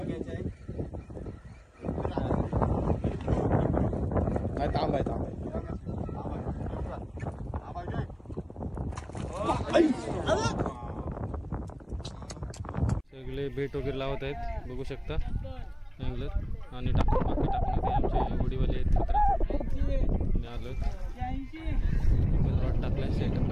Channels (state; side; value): identical; both; correlation 1.00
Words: तांब आहे, तांब आहे. सगळे बेट वगैरे लावत आहेत बघू शकता अँगलर. आणि बाकी टाकून आमचे होडीवाले आहेत मित्र आलो. रॉड टाकलाय, सेटअप